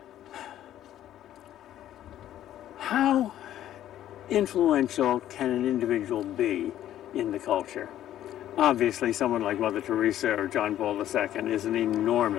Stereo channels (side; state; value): right; quieter; 12.1 dB